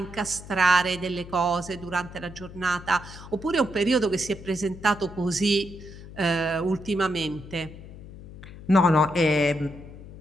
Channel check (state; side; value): noise; left; hum, 15 dB below the sound